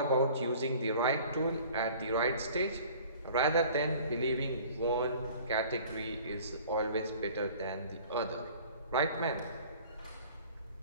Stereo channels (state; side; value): inverted; both; correlation -0.48